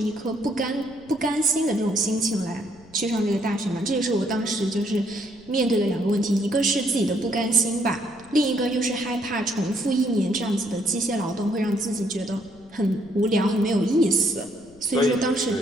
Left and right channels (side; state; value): left; noise; rumble, 25 dB below the sound